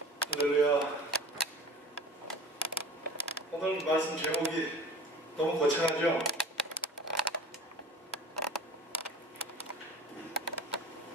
할렐루야. 오늘 말씀 제목이 너무 거창하죠?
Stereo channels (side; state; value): both; normal; correlation 0.39